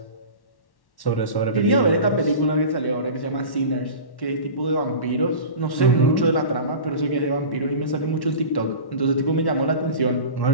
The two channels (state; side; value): late; right; 1.1 ms